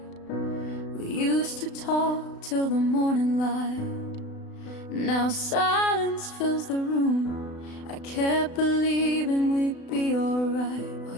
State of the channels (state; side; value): late; right; 36 ms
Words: We used to talk till the morning light, now silence fills the room. I kept believing we'd be alright, while